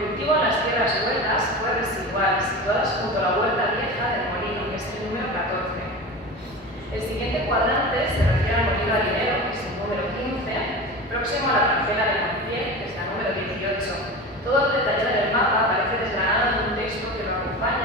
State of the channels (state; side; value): normal; both; correlation 0.30